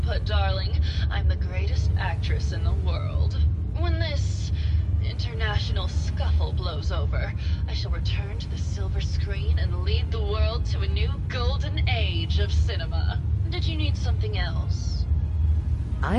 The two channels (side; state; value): both; identical; correlation 1.00